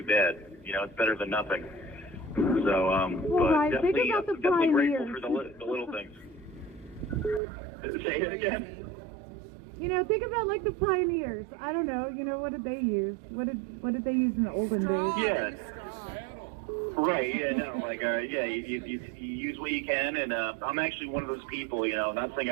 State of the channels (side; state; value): left; drops out; at 7.4 s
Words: bad. It's better than nothing. So, but definitely grateful for the little things. Say it again. Think about like the pioneers. I don't know. What did they use? What did they use in the olden days? Yeah. Right. Yeah. No. Like. Yeah. You use what you can, and I'm actually one of those people. Not saying